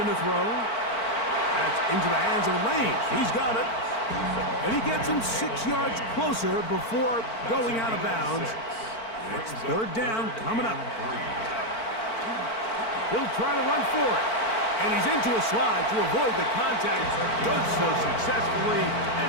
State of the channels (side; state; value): right; late; 4.5 ms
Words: to throw. That's into the hands of Lane. He's got it. And he gets him 6 yards closer before going out of bounds. It's third down coming up. He'll try to run for it. And he's into a slide to avoid the contact. Does so successfully, and